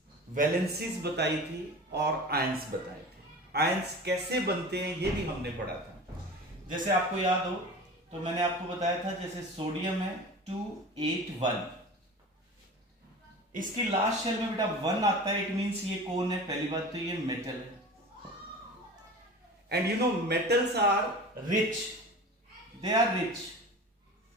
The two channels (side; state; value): both; normal; correlation 0.36